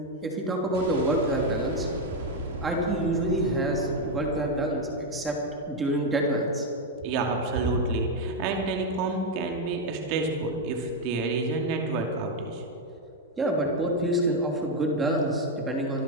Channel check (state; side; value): normal; both; correlation 0.04